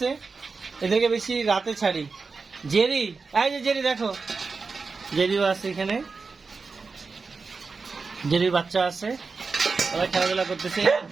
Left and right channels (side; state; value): left; quieter; 4.5 dB